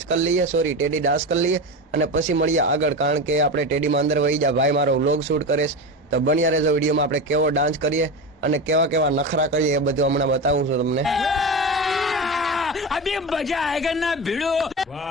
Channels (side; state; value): both; normal; correlation 0.22